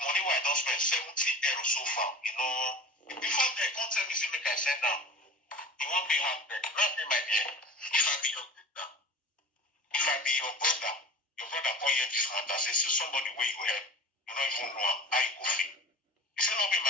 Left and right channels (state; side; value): normal; both; correlation 0.35